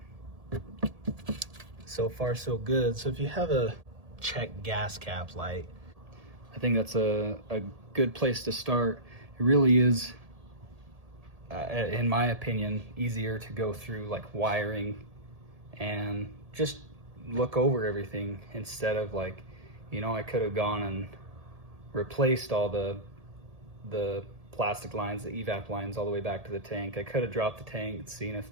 so far so good. So if you have a check gas cap light, I think that's a good place to start. It really is, in my opinion, easier to go through like wiring and just look over everything instead of like, you know, I could have gone and replaced all the plastic lines, the evap lines all the way back to the tank. I could have dropped the tank and seen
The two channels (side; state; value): left; late; 1.8 ms